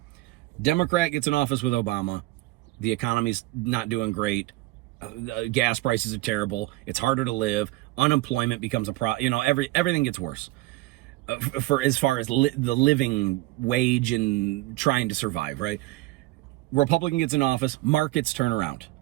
Democrat gets in office with Obama, the economy's not doing great, gas prices are terrible, it's harder to live, unemployment becomes a problem, everything gets worse. For as far as the living wage and trying to survive, right? Republican gets in office, markets turn around.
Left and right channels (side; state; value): left; quieter; 18.9 dB